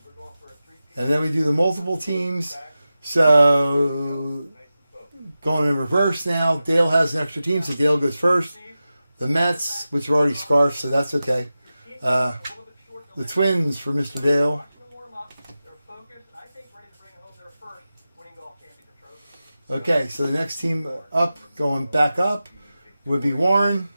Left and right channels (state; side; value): inverted; both; correlation -0.94